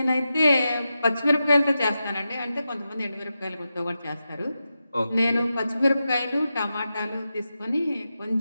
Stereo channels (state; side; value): inverted; both; correlation -0.90